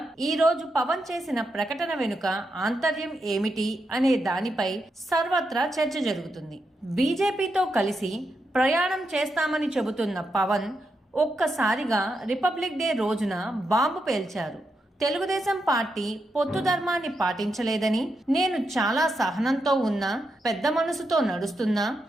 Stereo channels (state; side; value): normal; both; correlation 0.84